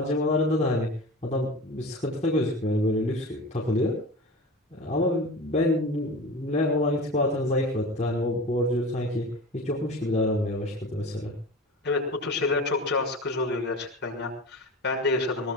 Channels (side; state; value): both; normal; correlation 0.32